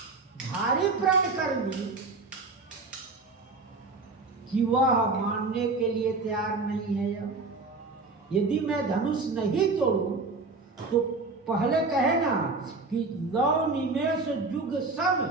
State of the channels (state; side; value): quieter; left; 3.7 dB